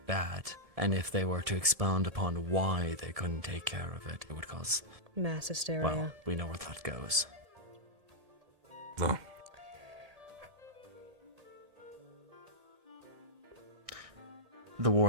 bad. And if they were to expound upon why they couldn't take care of it, it would cause... Mass hysteria. Well, we know where that goes. No. The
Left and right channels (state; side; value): late; left; 1.7 ms